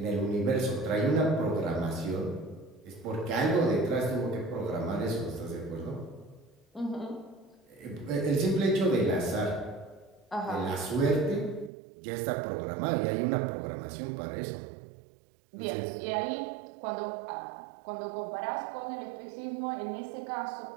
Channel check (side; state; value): left; drops out; at 11.7 s